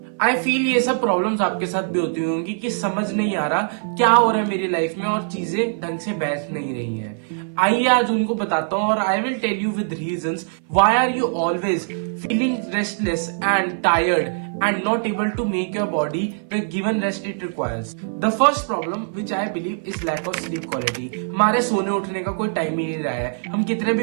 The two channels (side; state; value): left; silent; 58 dB below the other